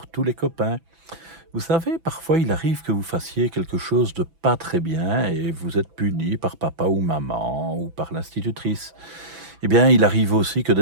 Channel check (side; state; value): left; late; 6.0 ms